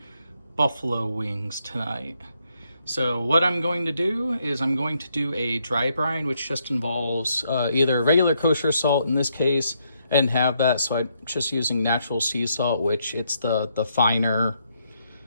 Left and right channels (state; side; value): inverted; both; correlation -0.76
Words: buffalo wings tonight. So what I'm going to do is I'm going to do a dry brine, which just involves either regular kosher salt in this case. I didn't have that, so I'm just using natural sea salt, which it's the finer